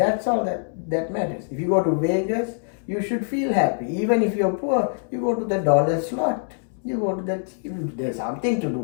all that matters. If you go to Vegas, you should feel happy. Even if you're poor, you go to the dollar slot. You go to there's something to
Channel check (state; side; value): silent; right; 62 dB below the other